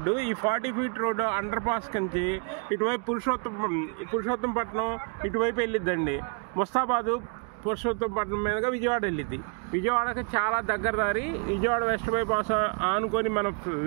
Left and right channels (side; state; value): left; quieter; 36.0 dB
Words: ఈ 40 ఫీట్ రోడ్డు అండర్ పాస్ నుంచి ఇటువైపు పురుషోత్తంపట్నం ఇటువైపు వెళ్ళిద్దండి. ముస్తాబాదు పురుషోత్తంపట్నం మీదుగా విజయవాడ వెళ్ళిద్ది. విజయవాడకి చాలా దగ్గర దారి. విజయవాడ వెస్ట్ బైపాస్ ఆనుకొని మన